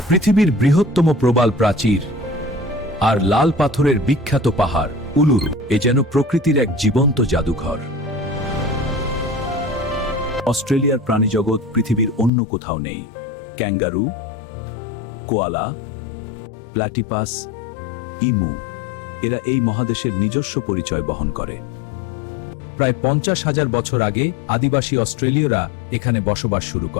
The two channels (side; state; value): right; drops out; at 12.3 s